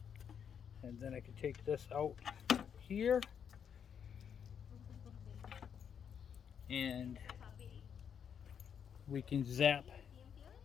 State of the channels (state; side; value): quieter; right; 7.8 dB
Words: And then I can take this out here and we can zap